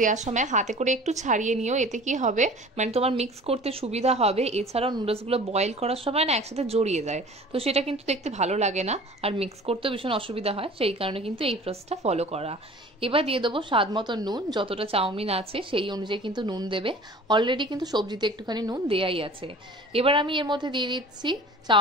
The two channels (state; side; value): normal; both; correlation 0.44